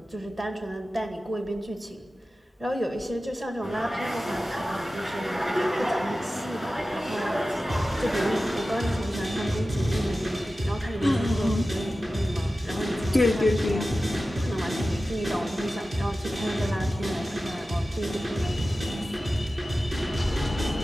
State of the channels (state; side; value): normal; both; correlation 0.95